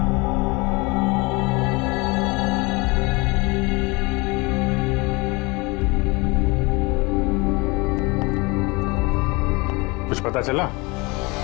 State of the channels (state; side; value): quieter; right; 26.2 dB